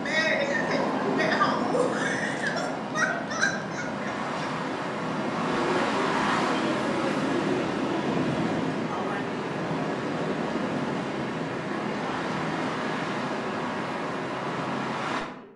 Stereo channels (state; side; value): identical; both; correlation 1.00